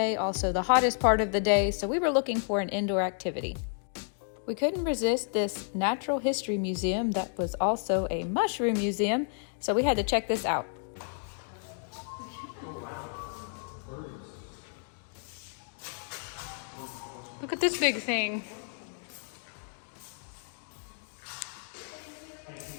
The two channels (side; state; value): right; silent; 57 dB below the other